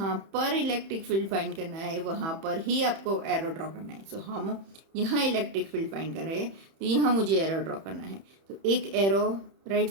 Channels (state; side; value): late; left; 31 ms